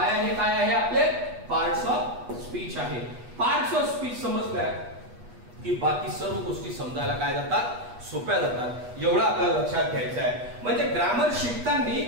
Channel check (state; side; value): late; left; 8.3 ms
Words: हे काय आहे? आपले पार्ट्स ऑफ स्पीच आहे. पार्ट्स ऑफ स्पीच समजल्या की बाकी सर्व गोष्टी समजायला काय जातात? सोप्या जातात. एवढं आपल्याला लक्षात घ्यायचं आहे. म्हणजे ग्रामर